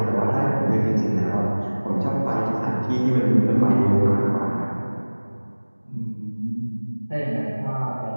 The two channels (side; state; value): both; inverted; correlation -1.00